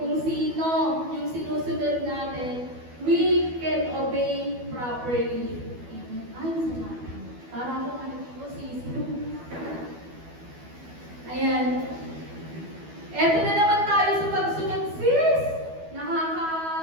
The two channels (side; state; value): left; late; 12 ms